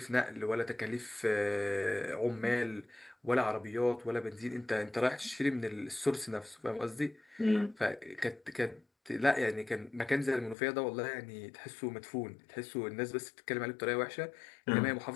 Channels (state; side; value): drops out; right; at 10.6 s